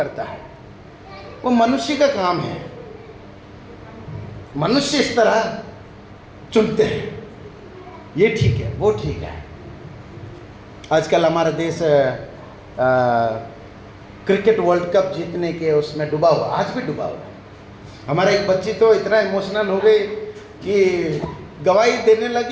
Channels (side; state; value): both; identical; correlation 1.00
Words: है, वो मनुष्य का काम है। मनुष्य इस तरह चुनते हैं, ये ठीक है, वो ठीक है। आजकल हमारा देश क्रिकेट वर्ल्ड कप जीतने के उसमें डूबा हुआ, आज भी डूबा हुआ। हमारा एक बच्ची तो इतना इमोशनल हो गई कि गवाही देने